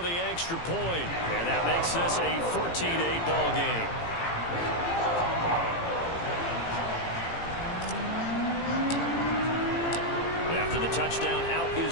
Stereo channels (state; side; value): late; right; 18 ms